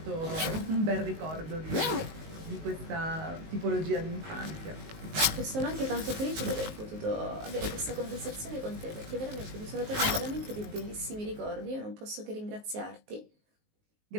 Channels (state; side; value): late; left; 19 ms